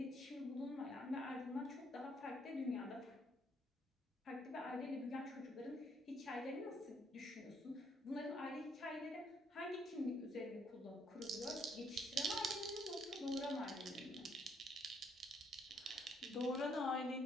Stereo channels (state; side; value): normal; both; correlation 0.69